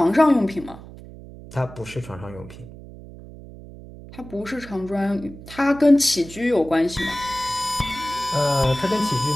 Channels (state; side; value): noise; right; hum, 16 dB below the sound